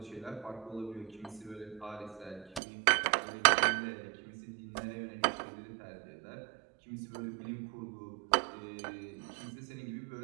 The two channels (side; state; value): left; drops out; at 2.6 s